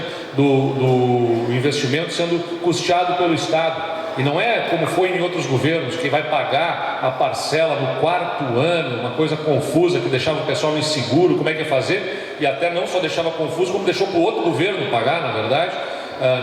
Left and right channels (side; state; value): both; identical; correlation 1.00